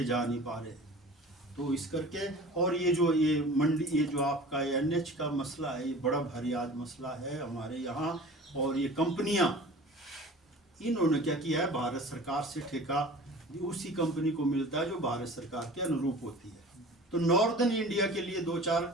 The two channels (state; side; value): normal; both; correlation 0.41